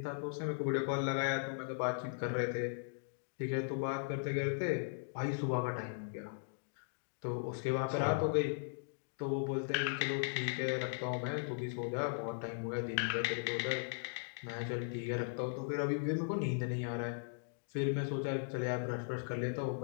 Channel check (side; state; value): right; silent; digital silence